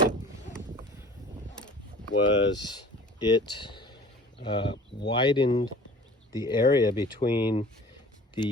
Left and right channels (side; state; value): both; normal; correlation 0.44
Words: was it widened the area between